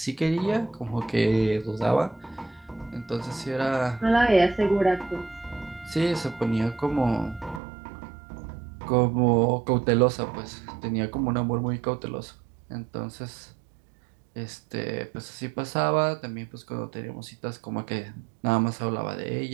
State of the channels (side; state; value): left; drops out; at 7.6 s